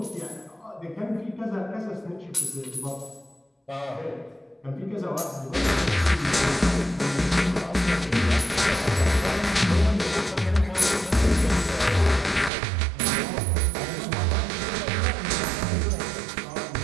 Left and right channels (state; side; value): drops out; left; at 12.5 s